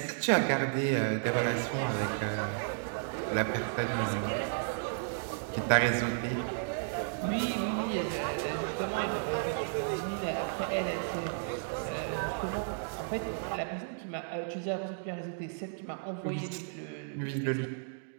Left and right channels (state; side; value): silent; left; digital silence